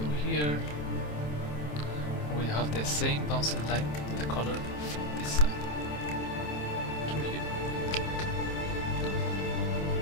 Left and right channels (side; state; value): right; late; 27 ms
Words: here. We have the same bouncing light, the color from this side to here.